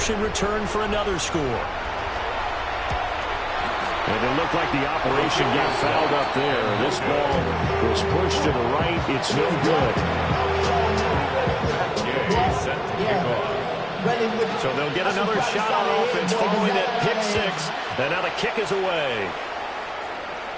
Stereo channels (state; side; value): identical; both; correlation 1.00